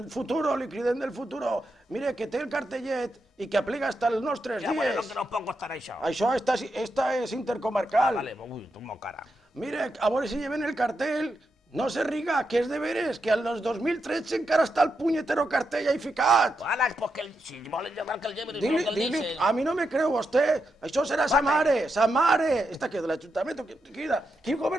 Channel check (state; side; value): normal; both; correlation 0.85